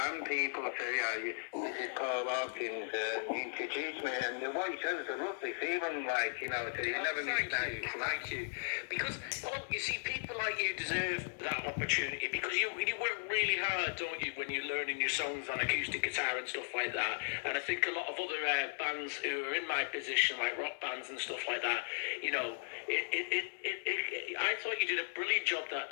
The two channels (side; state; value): right; silent; 53 dB below the other